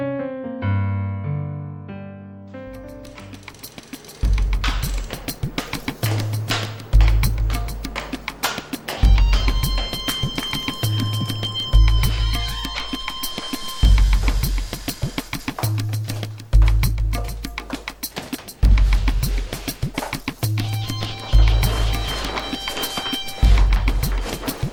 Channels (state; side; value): identical; both; correlation 1.00